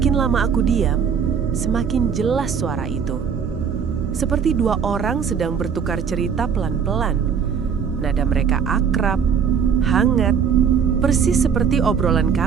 lama aku diam, semakin jelas suara itu. Seperti 2 orang sedang bertukar cerita pelan-pelan. Nada mereka akrab, hangat, persis seperti obrolan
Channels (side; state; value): left; quieter; 7.0 dB